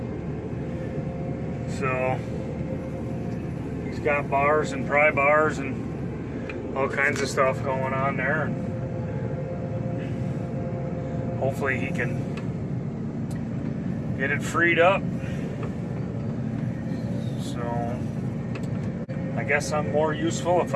So he's got bars and pry bars and all kinds of stuff going on there. Hopefully he can get it freed up. So I guess I'm more useful if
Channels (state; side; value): identical; both; correlation 1.00